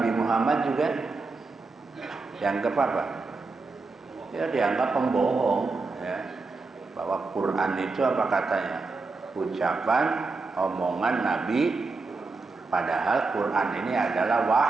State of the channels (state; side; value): quieter; left; 3.9 dB